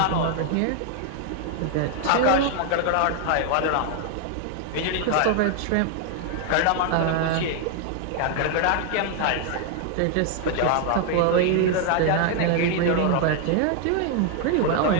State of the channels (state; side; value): different; both; correlation 0.00